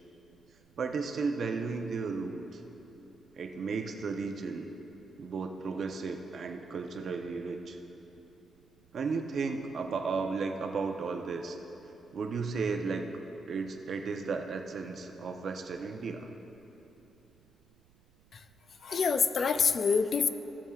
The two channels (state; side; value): noise; right; rumble, 30 dB below the sound